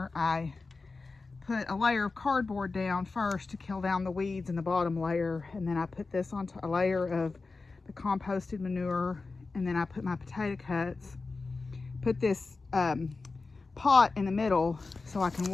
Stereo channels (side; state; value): right; quieter; 3.9 dB